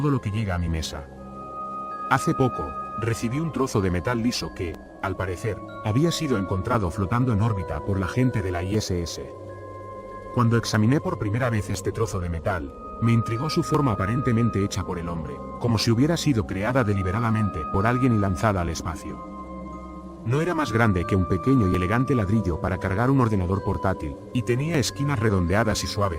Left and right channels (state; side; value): identical; both; correlation 1.00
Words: lo que llega a mi mesa. Hace poco, recibí un trozo de metal liso que, al parecer, había sido encontrado flotando en órbita por la gente de la ISS. Cuando examiné por primera vez este trozo de metal, me intrigó su forma aparentemente hecha por el hombre, como si hubiera sido creada deliberadamente por alguien y lanzada al espacio. No era más grande que un pequeño y elegante ladrillo para cargar un ordenador portátil, y tenía esquinas redondeadas y